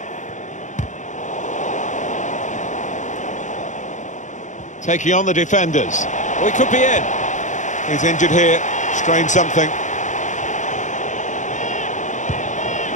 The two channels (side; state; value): right; late; 0.35 ms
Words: Taking on the defenders. Oh, he could be in. He's injured here, strained something.